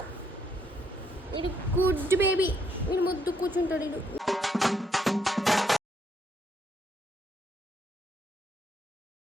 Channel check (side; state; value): both; normal; correlation 0.73